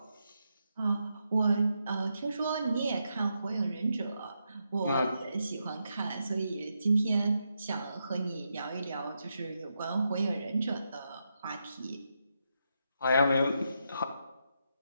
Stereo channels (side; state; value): both; inverted; correlation -0.83